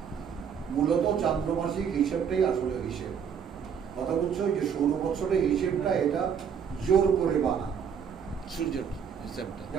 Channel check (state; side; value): quieter; left; 7.4 dB